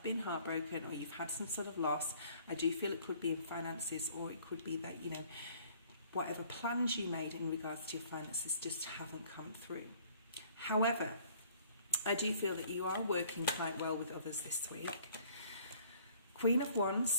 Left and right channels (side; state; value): both; inverted; correlation -0.57